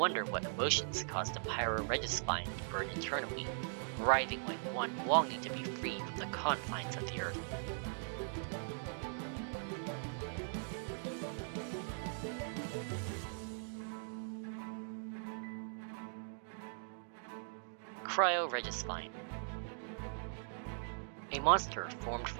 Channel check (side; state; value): left; silent; digital silence